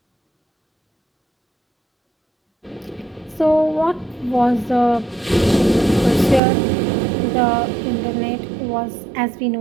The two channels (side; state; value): left; drops out; at 6.4 s